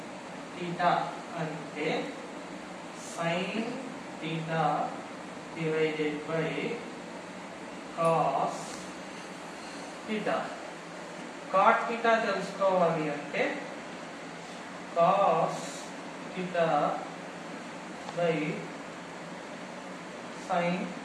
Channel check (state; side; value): identical; both; correlation 1.00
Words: theta అంటే sin theta divided by cos theta. cot theta తెలుసుకోవాలి అంటే cos theta by sin